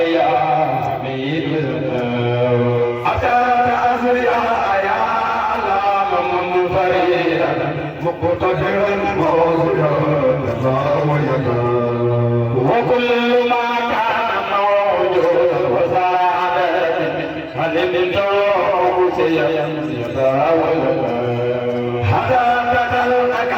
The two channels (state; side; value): identical; both; correlation 1.00